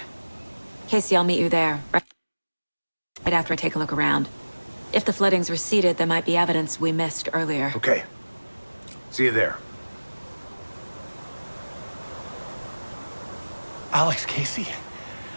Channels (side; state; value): both; inverted; correlation -1.00